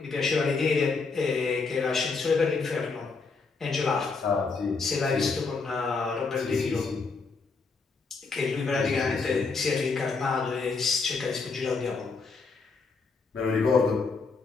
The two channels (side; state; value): right; quieter; 4.5 dB